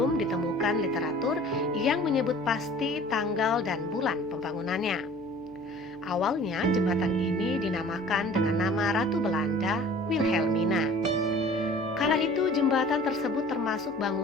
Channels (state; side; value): noise; right; hum, 25 dB below the sound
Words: ditemukan literatur yang menyebut pasti tanggal dan bulan pembangunannya. Awalnya jembatan ini dinamakan dengan nama Ratu Belanda Wilhelmina. Kala itu jembatan tersebut termasuk